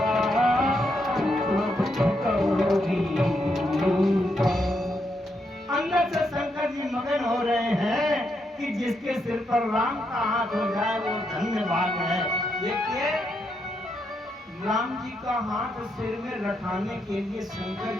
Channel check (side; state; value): both; normal; correlation 0.80